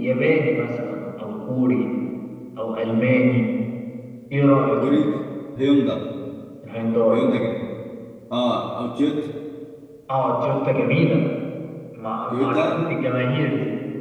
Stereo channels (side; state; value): both; identical; correlation 1.00